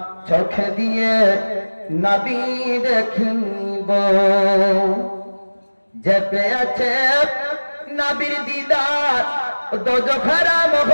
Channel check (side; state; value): both; inverted; correlation -1.00